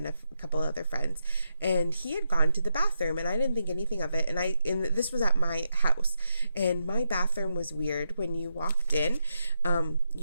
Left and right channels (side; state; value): both; inverted; correlation -0.83